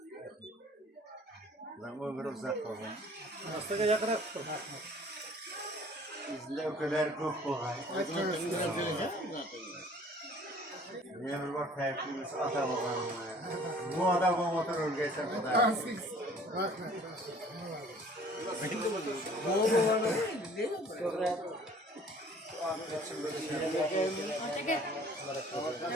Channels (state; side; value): normal; both; correlation 0.52